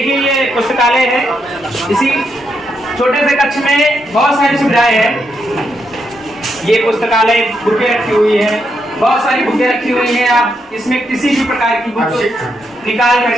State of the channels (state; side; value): normal; both; correlation 0.80